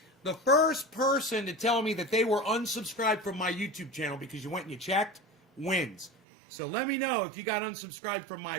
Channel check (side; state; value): left; drops out; at 6.1 s